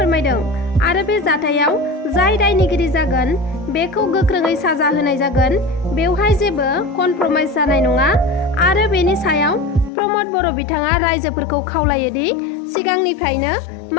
आरो बे जाथायाव जाय दायनिगिरि जागोन बेखौ गोख्रोङै साजा होनाय जागोन। बेवहाय जेबो कनप्रमाइज जानाय नङा आरो बेनि सायाव प्रमद बर' बिथाङा रायजोफोरखौ खावलायोदि सिगांनिफ्रायनो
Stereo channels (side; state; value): right; drops out; at 9.9 s